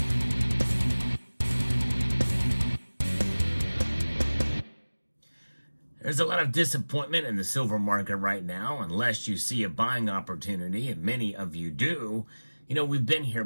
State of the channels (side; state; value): both; inverted; correlation -1.00